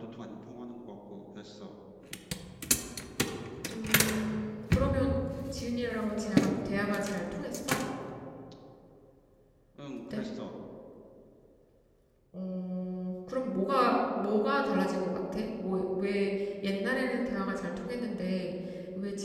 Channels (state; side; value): identical; both; correlation 1.00